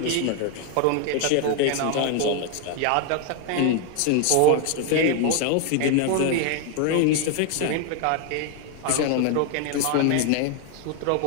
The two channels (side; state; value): both; different; correlation 0.01